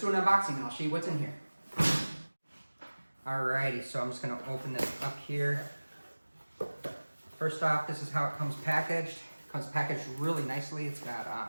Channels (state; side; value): inverted; both; correlation -1.00